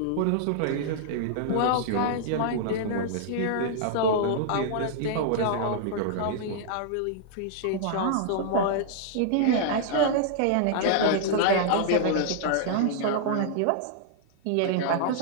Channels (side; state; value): both; different; correlation -0.01